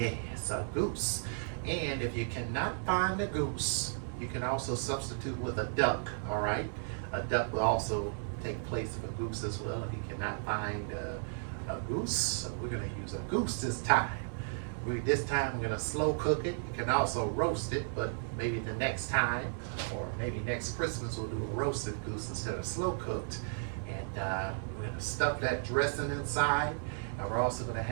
a goose. And if you cannot find a goose, you can also substitute with a duck, all right? A duck will also take place of a goose as well if you cannot find a goose. So we're gonna use a goose this time. This time we're gonna slow cook it. You can also roast it, but maybe the next time, or maybe next Christmas, we'll do a roasted goose instead of slow cooked. And we're gonna stuff that dressing inside. And we're also gonna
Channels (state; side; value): silent; left; digital silence